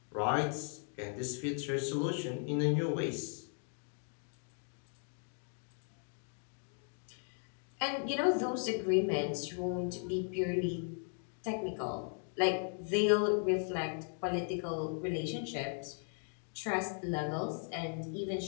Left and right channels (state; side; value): silent; right; 53 dB below the other